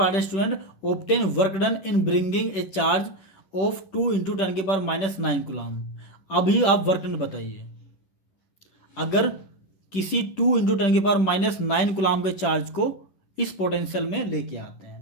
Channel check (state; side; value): late; right; 11 ms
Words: है student, obtain work done in bringing a charge of 2 × 10⁻9 coulomb. अभी आप वर्क डन बताइए, अगर किसी 2 × 10⁻9 कूलम के चार्ज को इस पोटेंशियल में लेके आते